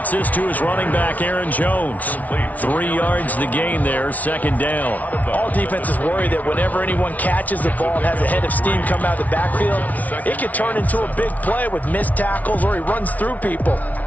this to his running back, Aaron Jones. 3 yards the gain there, second down. All defenses worry that whenever anyone catches the ball and has a head of steam come out of the backfield, it could turn into a big play with missed tackles or he runs through people.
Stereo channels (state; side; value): late; right; 0.073 ms